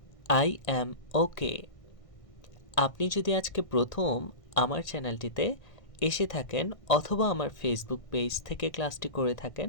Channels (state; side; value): late; right; 1.6 ms